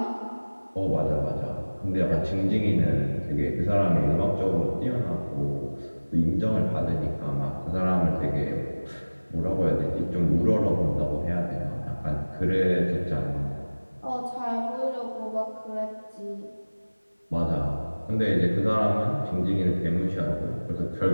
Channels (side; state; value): both; inverted; correlation -1.00